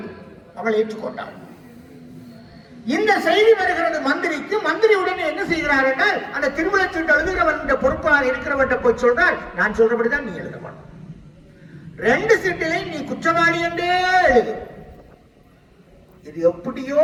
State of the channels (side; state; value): both; identical; correlation 1.00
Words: அவள் ஏற்றுக்கொண்டாள். இந்த செய்தி வருகிறது மந்திரிக்கு. மந்திரி உடனே என்ன செய்கிறார் என்றால், அந்த திருவிழச்சீட்டு எழுதுகிறவன் பொறுப்பாக இருக்கிறவன் போய் சொல்றார், நான் சொல்றபடிதான் நீ எழுத மாட்டோம், 2 சீட்டிலையும் நீ குற்றவாளி என்றே எழுது. இது எப்படியோ